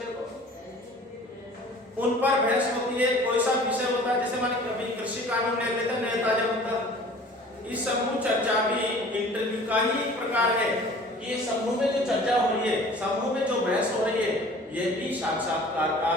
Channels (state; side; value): normal; both; correlation 0.47